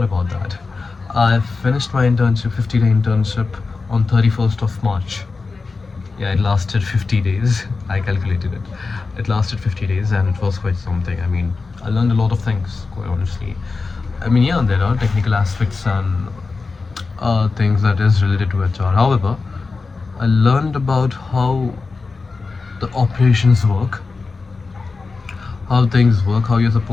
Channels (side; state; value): right; quieter; 4.2 dB